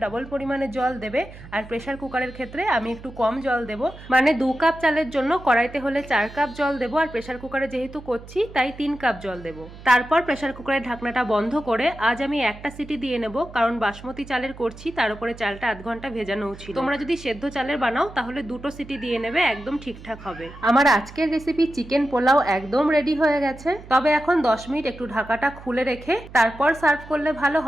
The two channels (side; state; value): right; noise; hum, 17 dB below the sound